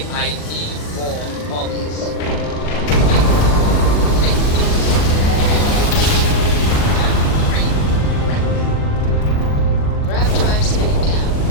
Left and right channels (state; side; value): late; right; 40 ms